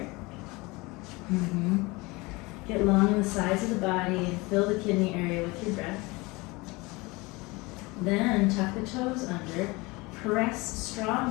Get long in the sides of the body and fill the kidney area with your breath. Then tuck the toes under. Press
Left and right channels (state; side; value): quieter; right; 24.0 dB